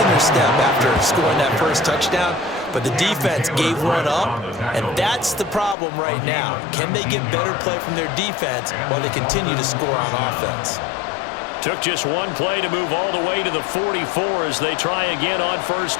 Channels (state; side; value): drops out; right; at 5.8 s